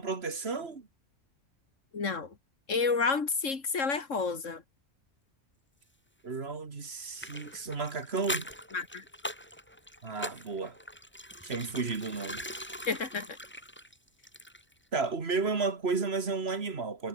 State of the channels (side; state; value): both; normal; correlation 0.00